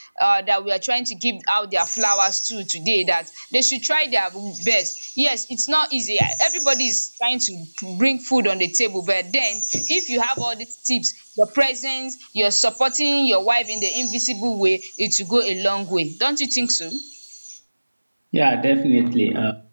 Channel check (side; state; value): both; inverted; correlation -1.00